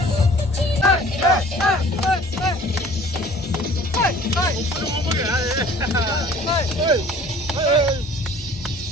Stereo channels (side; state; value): both; normal; correlation 0.50